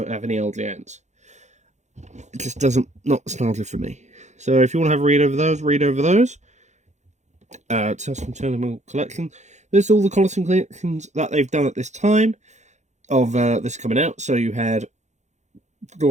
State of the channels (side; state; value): left; late; 0.34 ms